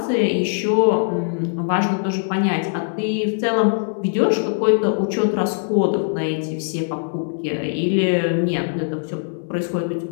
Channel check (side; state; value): right; silent; 65 dB below the other